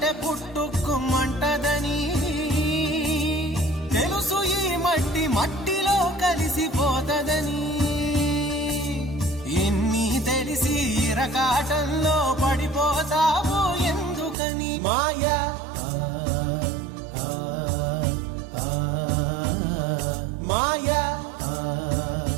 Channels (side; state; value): left; drops out; at 14.4 s